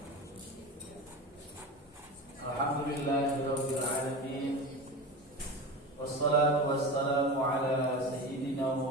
Alhamdulillahirabbil alamin. Wassalatu wassalamu ala sayyidina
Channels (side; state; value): both; normal; correlation 0.27